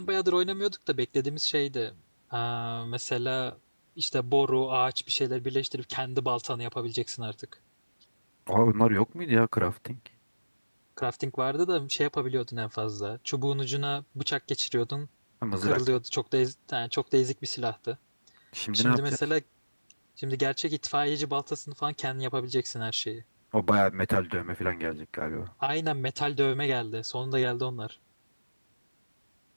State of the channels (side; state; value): both; inverted; correlation -1.00